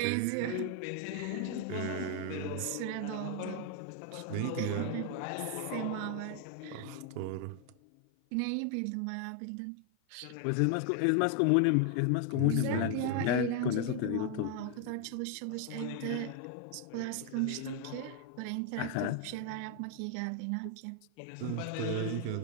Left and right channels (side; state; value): both; different; correlation 0.00